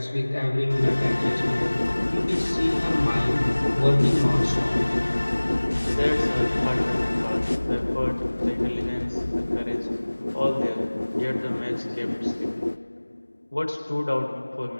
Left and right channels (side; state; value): both; inverted; correlation -1.00